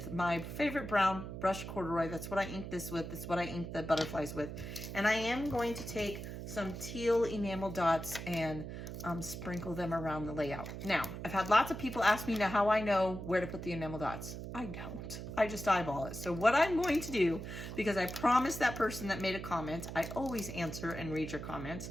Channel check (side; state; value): right; noise; hum, 8 dB below the sound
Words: my favorite brown brushed corduroy. That's what I ink this with. That's what I ink the butterflies with. And I am going to take some teal enamel dots and sprinkle them around the layout. Now, I've had lots of people ask me now how I know where to put the enamel dots. I don't. I just eyeball it. So what I'm going to do, because I promised that person that made a comment, I always answer and read your comments.